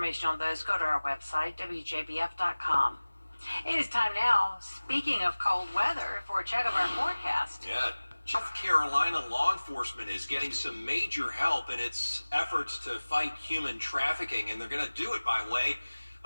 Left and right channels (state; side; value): inverted; both; correlation -1.00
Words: on those, go to our website, WJBF.com. It is time now, speaking of cold weather, for a check of our forecast. Yeah. South Carolina law enforcement is getting some major help in its efforts to fight human trafficking, and they're going to do it by way